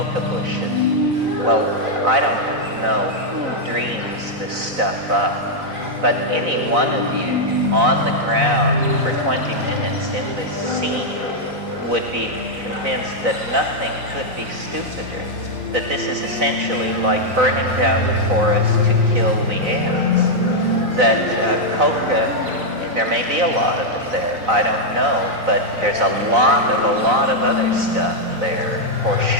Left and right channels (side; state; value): left; late; 4.0 ms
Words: bushes. Well, I don't know who dreams this stuff up, but any one of you on the ground for 20 minutes in this scene would be convinced that nothing could be stupider, that this is essentially like burning down the forest to kill the ants, that coca, there may be a lot of it there, I don't know, but there's a lot of other stuff there, for